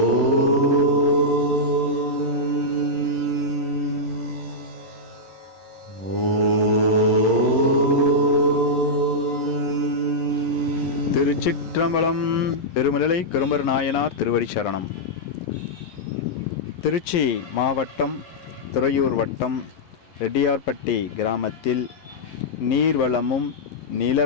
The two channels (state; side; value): late; right; 11 ms